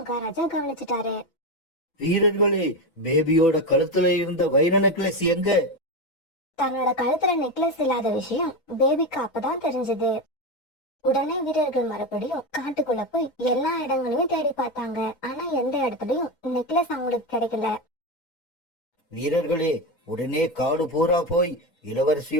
கவனிச்சுட்டாரு. வீரர்களே, பேபியோட கழுத்துல இருந்த வைர நெக்லஸ் எங்க? தன்னோட கழுத்துல நெக்லஸ் இல்லாத விஷயம் பேபிக்கு அப்பதான் தெரிஞ்சது. உடனே வீரர்கள் மறுபடியும் காட்டுக்குள்ள போய் எல்லா இடங்களையும் தேடி பார்த்தாங்க. ஆனா எந்த இடத்துலயும் நெக்லஸ் அவங்களுக்கு கிடைக்கல. வீரர்களே, உடனே காடு பூரா போய்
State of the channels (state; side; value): late; right; 6.0 ms